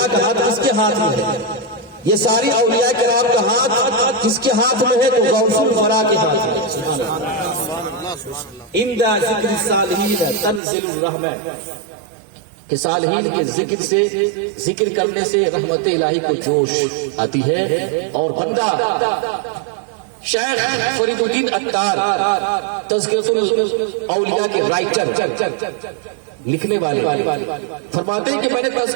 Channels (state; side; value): drops out; left; at 10.6 s